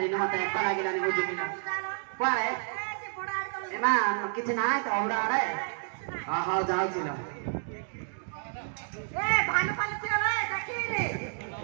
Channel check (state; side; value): silent; left; digital silence